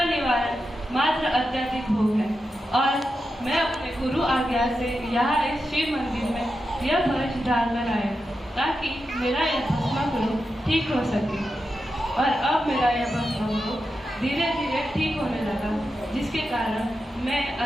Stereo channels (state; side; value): normal; both; correlation 0.89